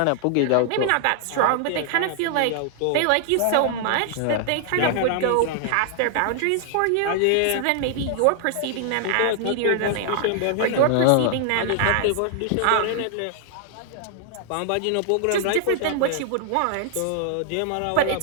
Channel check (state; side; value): different; both; correlation 0.00